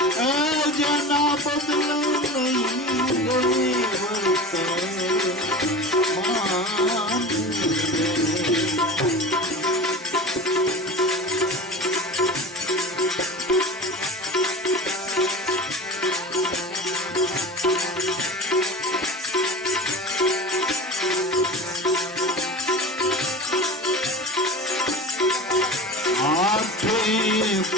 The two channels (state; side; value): normal; both; correlation 0.33